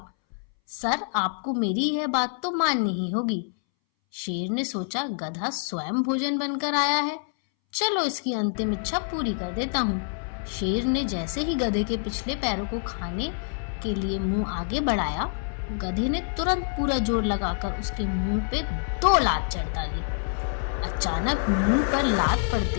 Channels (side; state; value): right; silent; 61 dB below the other